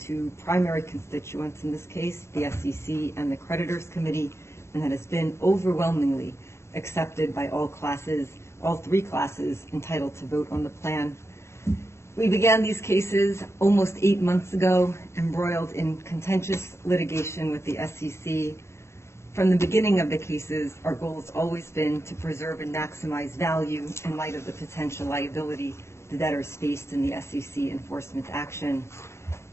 primary constituents in this case, the SEC and the Creditors Committee, and that has been overwhelmingly accepted by all three classes entitled to vote on the plan. We began these cases almost 8 months ago, embroiled in contentious litigation with the SEC. From the beginning of the cases, our goal has always been to preserve and maximize value in light of the potential liability the debtors faced in the SEC enforcement action.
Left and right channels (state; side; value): late; right; 0.13 ms